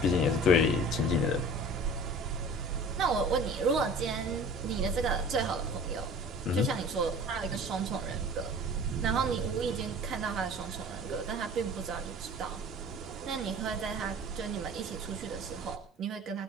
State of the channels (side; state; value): both; normal; correlation 0.43